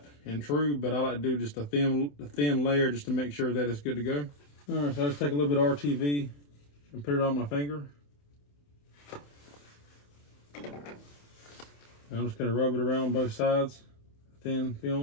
and true, but I like to do just a thin layer just to make sure that it's good to go. All right, so I just take a little bit of RTV and put it on my finger. And I'm just gonna rub it around both sides, thin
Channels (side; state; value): right; late; 28 ms